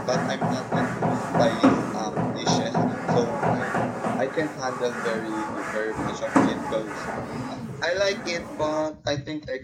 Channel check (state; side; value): identical; both; correlation 1.00